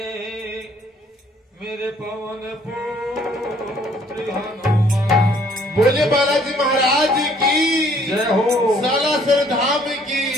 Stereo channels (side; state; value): both; normal; correlation 0.61